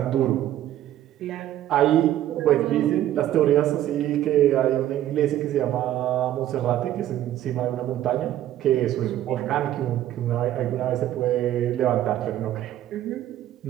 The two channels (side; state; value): left; quieter; 12.6 dB